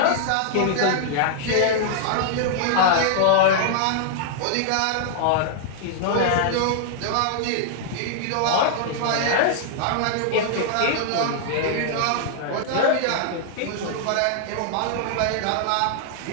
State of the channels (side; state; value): both; different; correlation -0.01